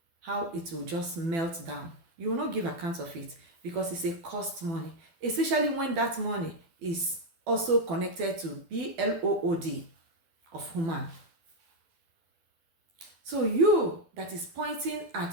how it will just melt down. You will not give account of it because it's a cost money. especially when that money is also connected to BLOOD of human. So you that is pointing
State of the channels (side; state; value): left; late; 12 ms